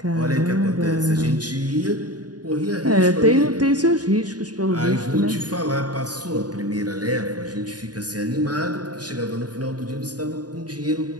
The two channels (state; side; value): late; left; 0.69 ms